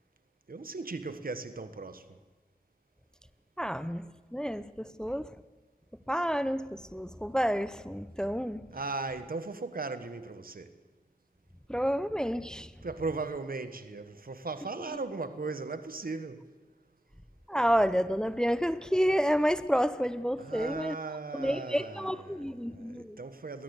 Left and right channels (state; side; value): normal; both; correlation 0.88